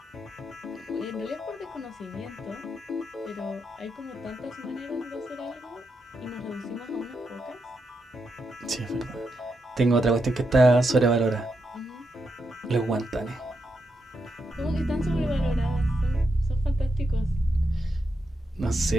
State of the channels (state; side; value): normal; both; correlation 0.84